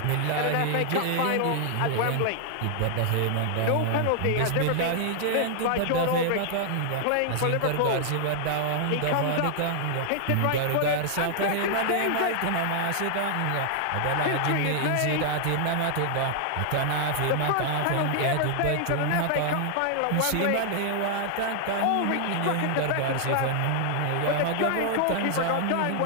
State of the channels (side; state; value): both; different; correlation 0.00